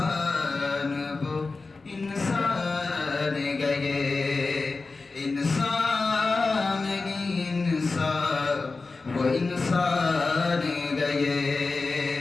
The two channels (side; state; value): right; quieter; 3.9 dB